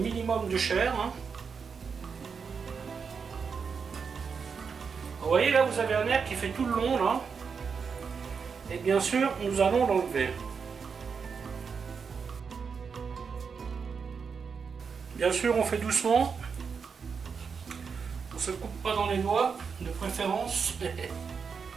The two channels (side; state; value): left; quieter; 5.8 dB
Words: de chair. Vous voyez là, vous avez un nerf qui fait tout le long là. Et bien sûr, nous allons l'enlever. Bien sûr, on fait doucement. On ne se coupe pas dans les doigts, de préférence.